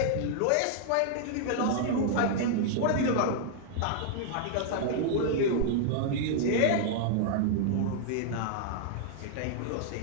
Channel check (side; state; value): both; different; correlation -0.01